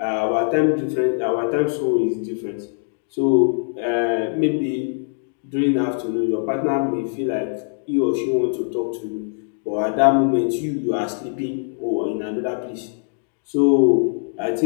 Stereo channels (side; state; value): right; silent; digital silence